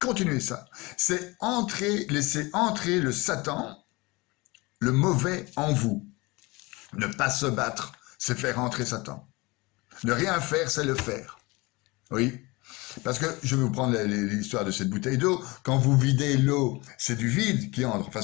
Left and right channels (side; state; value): right; quieter; 24.0 dB